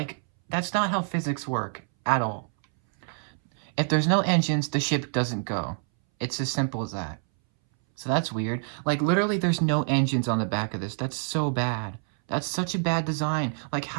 that's not how physics work at all. If there's no engines, the ship doesn't go. It's as simple as that. So that's weird. Like, literally, there's no engines on the back of this. That's so bad. That's such a bad design. Like,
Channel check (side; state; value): left; silent; 60 dB below the other